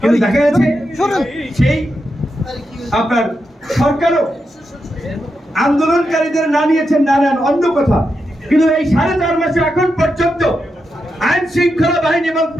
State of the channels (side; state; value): both; normal; correlation 0.86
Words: দেখা যাচ্ছে সেই আপনার সরকারও আন্দোলনকারীদের না নিয়েছেন, না নেন অন্য কথা, কিন্তু এই 4.5 মাসে এখন পর্যন্ত আইন শৃঙ্খলা বাহিনী এবং